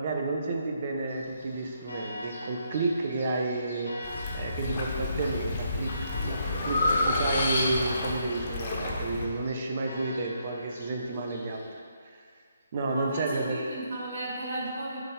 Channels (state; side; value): inverted; both; correlation -0.73